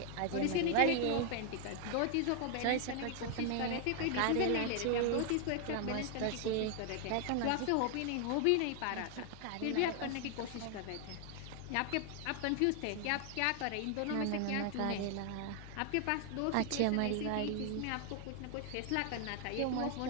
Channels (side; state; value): both; different; correlation 0.00